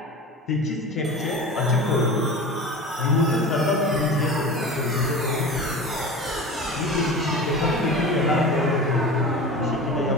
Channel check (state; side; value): normal; both; correlation 0.33